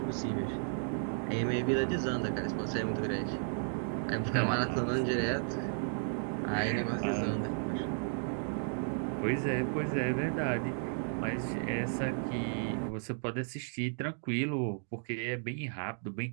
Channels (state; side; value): silent; left; digital silence